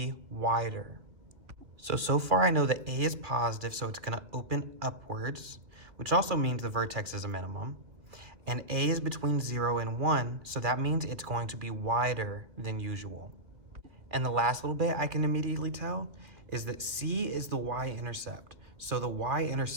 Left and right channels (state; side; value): late; left; 2.4 ms